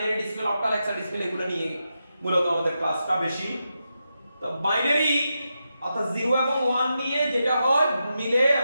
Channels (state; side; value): inverted; both; correlation -0.87